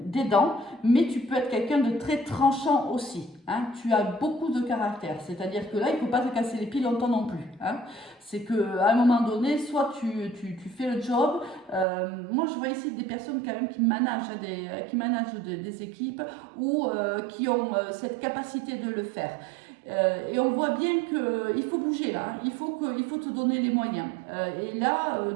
d'aidant, mais tu peux être quelqu'un de très tranchant aussi. Hein. Tu as beaucoup de caractère, c'est-à-dire que là, il ne faut pas te casser les pieds longtemps non plus. Hein. C'est qu'à un moment donné, soit tu fais le job. Moi, je vois ici des personnes quand même qui managent des équipes ou qui ont cette capacité de le faire. Et on voit bien qu'il faut bouger là, il faut te donner les moyens. Et là,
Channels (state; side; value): drops out; left; at 11.9 s